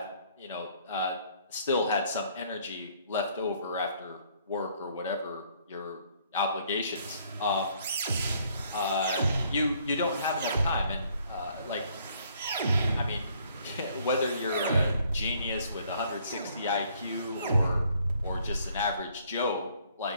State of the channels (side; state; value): both; inverted; correlation -0.63